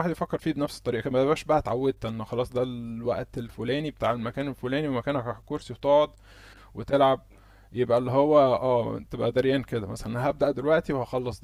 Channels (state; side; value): identical; both; correlation 1.00